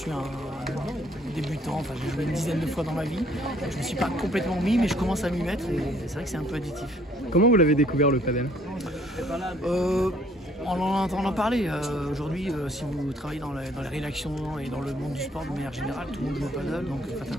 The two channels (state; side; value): normal; both; correlation 0.62